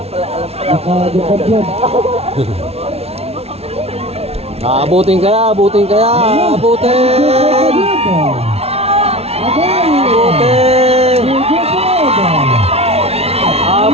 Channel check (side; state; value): left; late; 0.30 ms